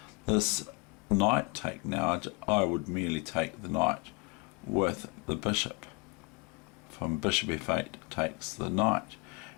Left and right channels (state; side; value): quieter; right; 29.8 dB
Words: this knight take now, I would merely take the knight with the bishop. From bishop F8 takes the knight,